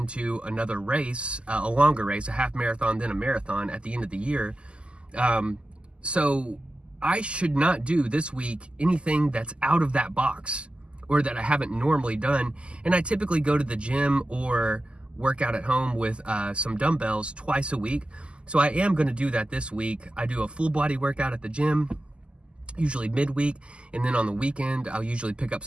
another race, a longer race, a half marathon, then a marathon at the end of the year. So I should not do this week anything that's out of that box or that I haven't normally done. And I typically go to the gym or work out at home with some dumbbells twice a week. So I am gonna do that this week. I do a full body workout at the gym, usually midweek, and then on the weekend I'll usually pick up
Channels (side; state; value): left; late; 0.052 ms